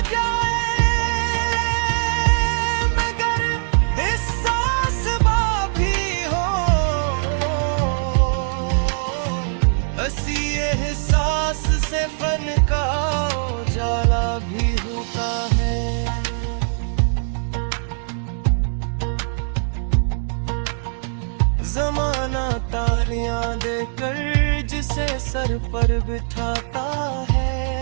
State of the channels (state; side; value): silent; left; digital silence